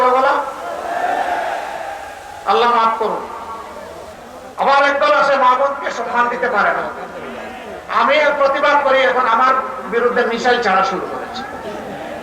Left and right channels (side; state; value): both; identical; correlation 1.00